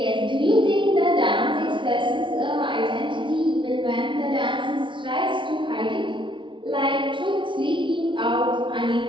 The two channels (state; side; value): late; left; 0.24 ms